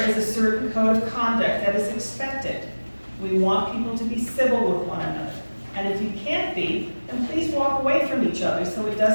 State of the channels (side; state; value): both; inverted; correlation -1.00